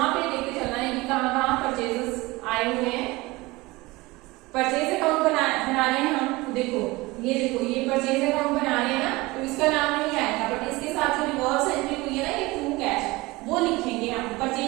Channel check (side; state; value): left; quieter; 21.7 dB